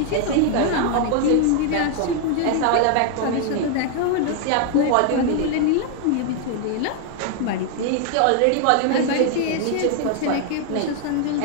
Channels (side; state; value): both; different; correlation 0.00